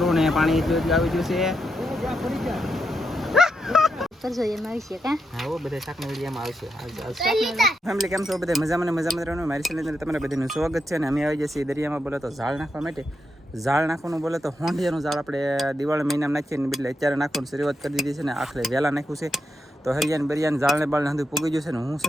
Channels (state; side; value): normal; both; correlation 0.84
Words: ને પાણી આવી ગયું છે. ફેમિલી કેમ છો બધા? મજામાં રહેવાનું. મારી ચેનલ તમારા બધાનું સ્વાગત છે. અને અમે આવી જઈએ દરિયામાં. બોલો તો ઝાડ નાખવા માટે. ઝાડ નાખવાનું બોલે તો હોંડિયાનું ઝાડ આપણે દિવાળી મહિનામાં નાખીએ ને બદલે અત્યારે નાખવાનું શરૂઆત કરી દીધી છે ને આખરે વહેલા નાખ્યું છે. તો હરિયાને બરિયાને ઝાડને બાળને હંધું પૂગી ગયું છે ને હું છે